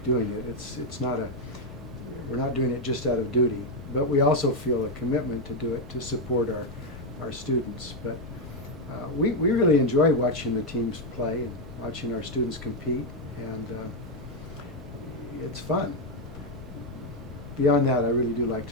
doing it. It's not a, we're not doing it just out of duty, but we also feel a commitment to do it to support our students. But we really enjoy watching the teams play and watching our students compete, and it's fun. Beyond that, I really do like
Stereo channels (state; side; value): normal; both; correlation 0.04